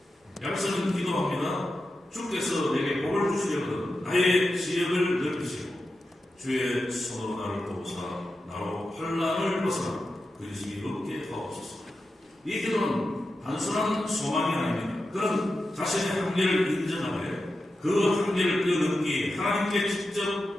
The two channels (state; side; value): normal; both; correlation 0.90